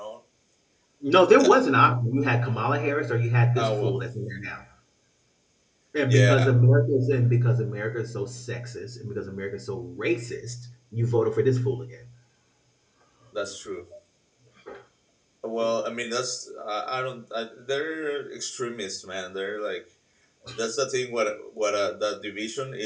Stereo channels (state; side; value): identical; both; correlation 1.00